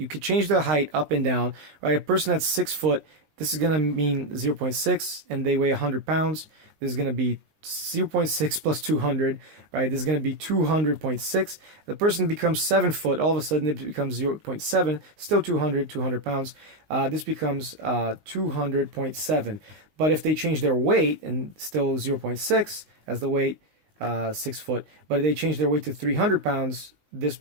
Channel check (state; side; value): late; left; 19 ms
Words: could change the height up and down, right? A person that's 6 foot, this is going to mean 0.6, and they weigh 100 pounds. This is going to be 0.6 plus 200, right? This is going to be 200.6. The person becomes 7 foot. All of a sudden, it becomes 0.7, still 200 pounds. This becomes 200.7. But if they change their weight, and still 0.6 as the weight, 6 foot, but if they change their weight to 300 pounds, this